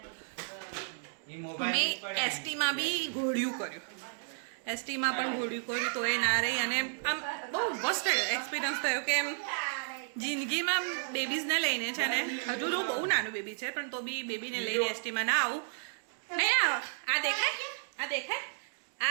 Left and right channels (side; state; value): left; silent; digital silence